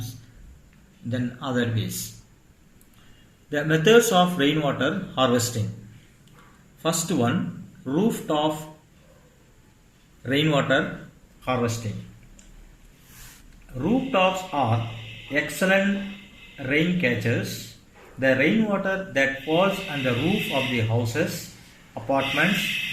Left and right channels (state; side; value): identical; both; correlation 1.00